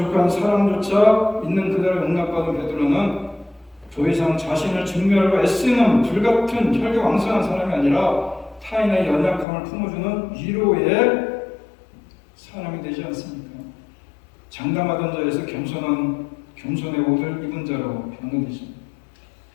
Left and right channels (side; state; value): right; drops out; at 9.5 s